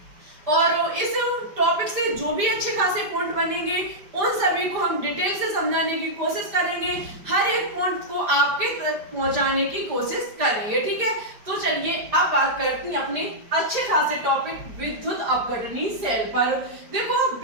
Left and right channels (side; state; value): left; late; 5.0 ms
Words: और इस टॉपिक से जो भी अच्छे खासे पॉइंट बनेंगे उन सभी को हम डिटेल से समझाने की कोशिश करेंगे, हर एक पॉइंट को आपके तक पहुंचाने की कोशिश करेंगे। ठीक है, तो चलिए अब बात करते हैं अपने अच्छे खासे टॉपिक विद्युत अपघटनी सेल पर। देखो,